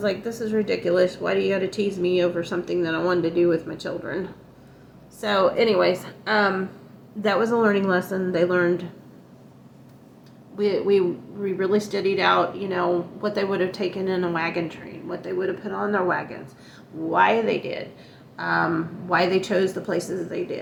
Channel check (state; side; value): identical; both; correlation 1.00